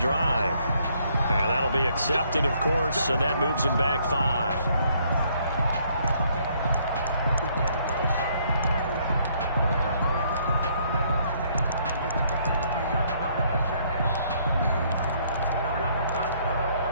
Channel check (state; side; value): inverted; both; correlation -0.67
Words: And that'll be accepted, of course, and that moves him back 5.